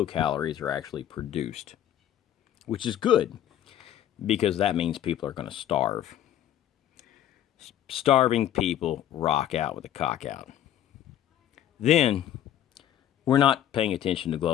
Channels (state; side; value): quieter; right; 11.4 dB